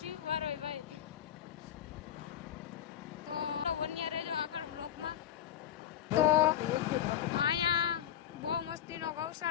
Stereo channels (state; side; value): quieter; right; 10.5 dB